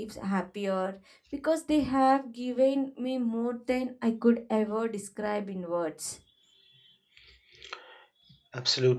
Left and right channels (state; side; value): identical; both; correlation 1.00